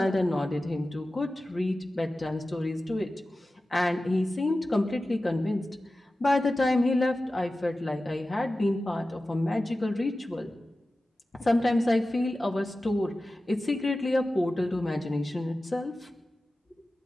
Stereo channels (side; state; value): both; normal; correlation 0.95